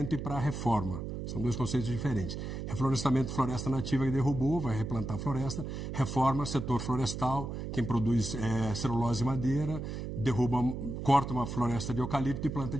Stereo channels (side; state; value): right; noise; hum, 6 dB below the sound